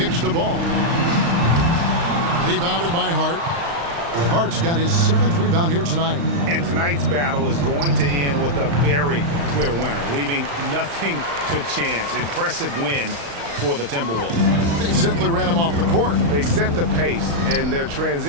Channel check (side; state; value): left; late; 35 ms